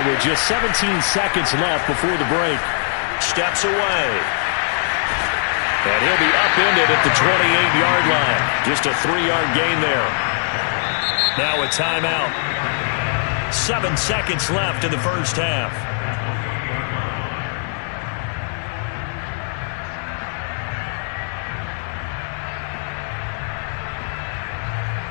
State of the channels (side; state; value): right; silent; digital silence